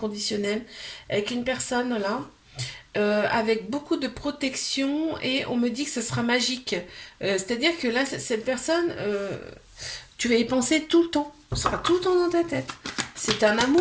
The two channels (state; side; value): identical; both; correlation 1.00